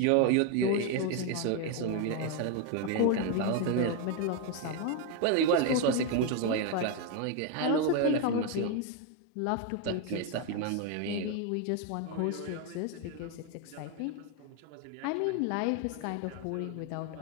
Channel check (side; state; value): both; different; correlation 0.01